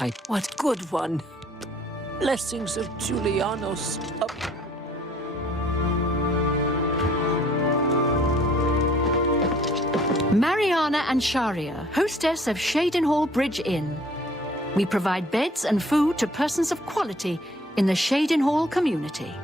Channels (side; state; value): both; normal; correlation 0.57